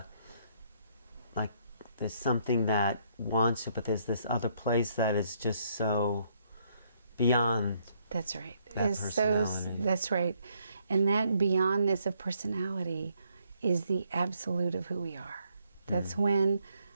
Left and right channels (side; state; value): both; inverted; correlation -0.71